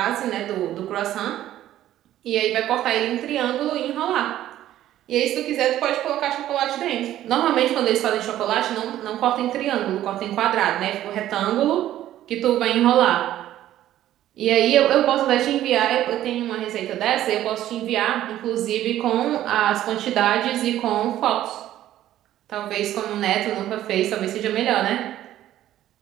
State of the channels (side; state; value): left; quieter; 13.0 dB